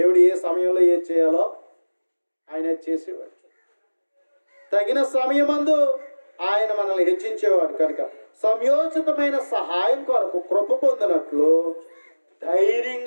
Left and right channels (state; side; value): inverted; both; correlation -1.00